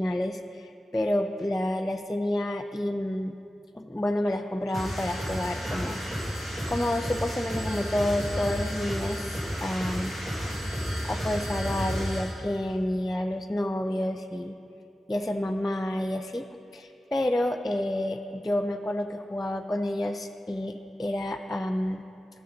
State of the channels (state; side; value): normal; both; correlation 0.94